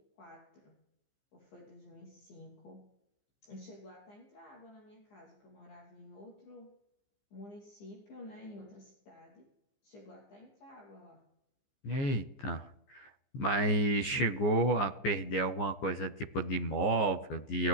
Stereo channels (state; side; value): late; right; 15 ms